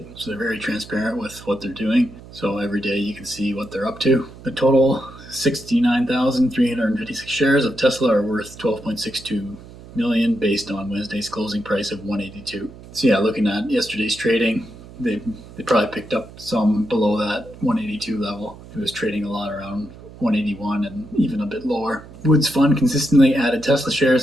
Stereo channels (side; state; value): right; noise; hum, 18 dB below the sound